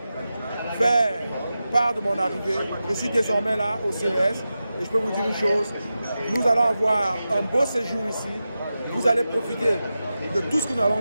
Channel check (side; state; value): both; inverted; correlation -0.92